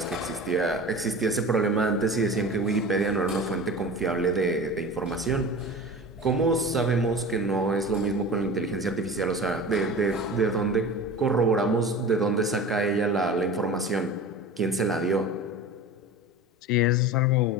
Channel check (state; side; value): normal; both; correlation 0.35